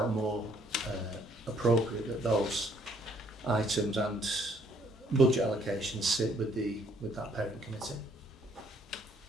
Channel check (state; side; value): normal; both; correlation 0.65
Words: more appropriate that those items and budget allocations sit with that parent committee.